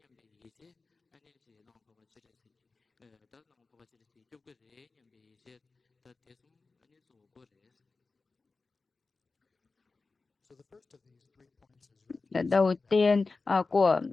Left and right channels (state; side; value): quieter; right; 3.9 dB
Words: 이제 아니 지 랑 바바 지레스 다랑 바바 지레스 좁게레 냠베 이제 다 대숨 아니 조고레스. So the first of these 3 points is refuge. Đầu tiên của